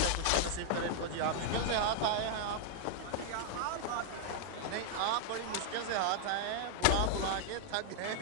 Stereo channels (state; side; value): different; both; correlation 0.00